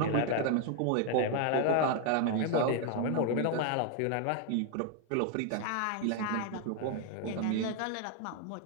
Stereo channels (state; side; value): different; both; correlation 0.00